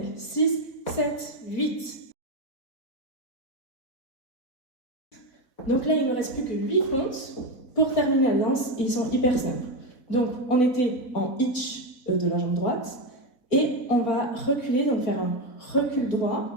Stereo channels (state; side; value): late; right; 4.0 ms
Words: 6, 7, 8. Donc là, il ne me reste plus que 8 comptes pour terminer la danse et ils sont hyper simples. Donc, on était en hitch de la jambe droite et on va reculer, donc faire un recul